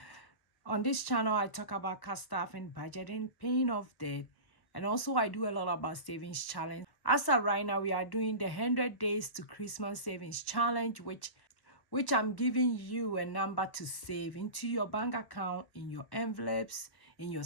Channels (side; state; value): right; late; 1.1 ms